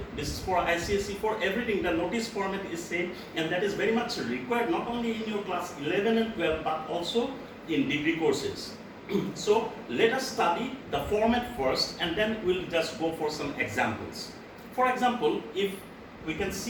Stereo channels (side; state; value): both; identical; correlation 1.00